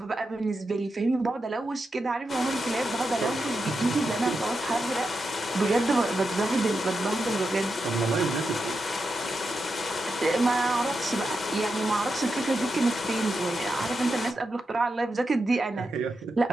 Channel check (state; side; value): normal; both; correlation 0.87